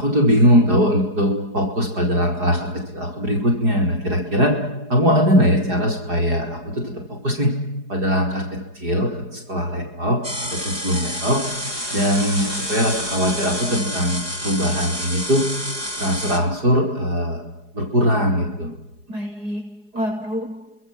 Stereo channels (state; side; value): late; left; 4.8 ms